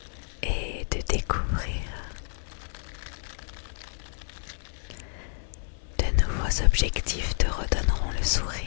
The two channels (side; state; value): right; silent; 58 dB below the other